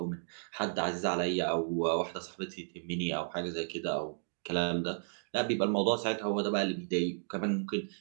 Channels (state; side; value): silent; left; digital silence